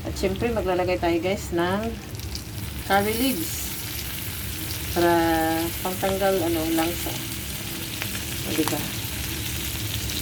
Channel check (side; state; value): both; identical; correlation 1.00